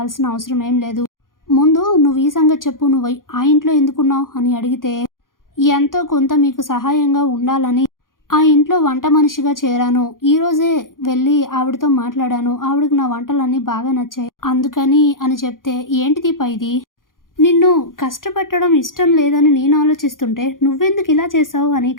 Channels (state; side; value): late; right; 0.90 ms